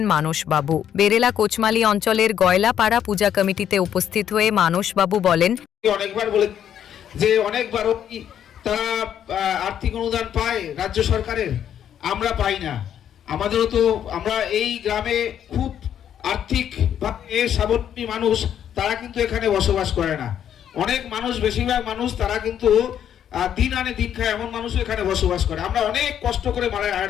মানসবাবু। বেরেলা কোচমালি অঞ্চলের গয়লাপাড়া পূজা কমিটিতে উপস্থিত হয়ে মানসবাবু বলেন, অনেকবার বলে যে অনেকবার তারা আর্থিক অনুদান পায় রাজ্য সরকারের, আমরা পাই না। আমাদেরও তো আমরা এই গ্রামে খুব আর্থিক স্বাবলম্বী মানুষ, তারা কিন্তু এখানে বসবাস করে না। অনেক মানুষ, বেশিরভাগ মানুষ তারা কিন্তু দিন আনে দিন খায় এমন মানুষও এখানে বসবাস করে। আমরা অনেক কষ্ট করে মায়ের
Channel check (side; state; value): right; quieter; 9.6 dB